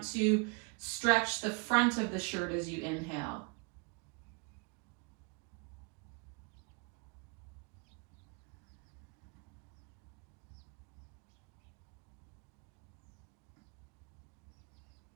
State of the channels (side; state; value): left; quieter; 31.3 dB